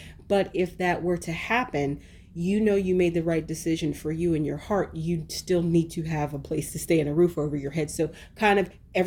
But if that were to happen, you made the right decision for you in your heart. You still need to have a place to stay and a roof over your head. So kind of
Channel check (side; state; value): both; identical; correlation 1.00